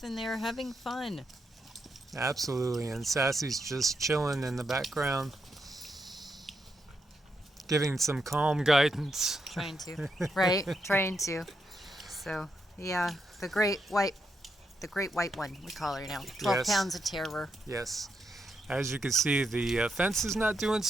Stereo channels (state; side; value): normal; both; correlation 0.82